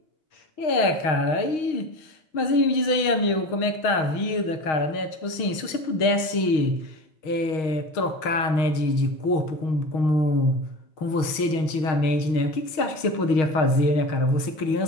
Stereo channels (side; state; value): right; late; 6.4 ms